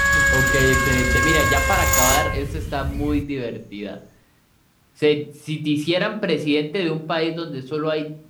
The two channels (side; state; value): both; identical; correlation 1.00